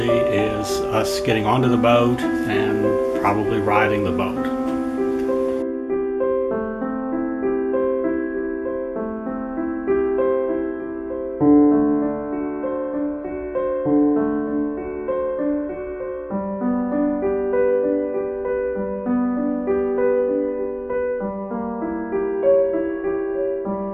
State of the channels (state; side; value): identical; both; correlation 1.00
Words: is us getting onto the boat and probably riding the boat.